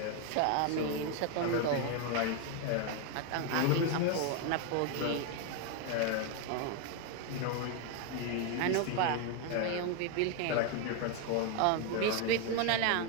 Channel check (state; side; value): different; both; correlation 0.01